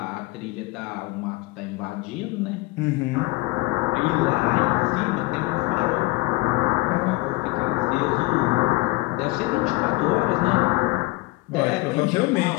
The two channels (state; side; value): quieter; right; 22.3 dB